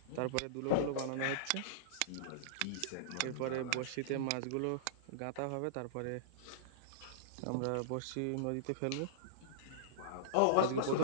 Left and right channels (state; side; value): different; both; correlation -0.03